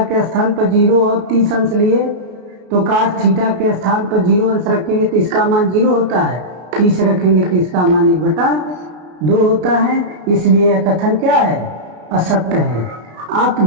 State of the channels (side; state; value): left; late; 33 ms